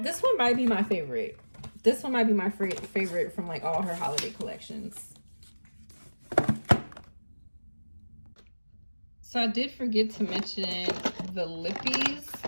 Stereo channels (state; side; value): inverted; both; correlation -1.00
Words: one might be my favorite. This one might be my favorite from like all her holiday collections. So I did forget to mention the lippies.